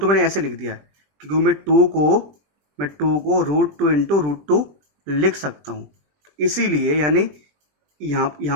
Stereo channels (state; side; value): late; left; 20 ms